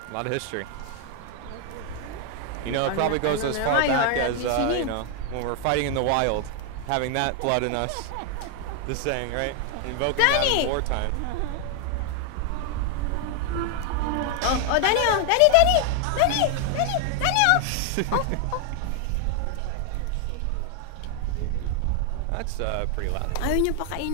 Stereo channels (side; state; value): both; different; correlation 0.00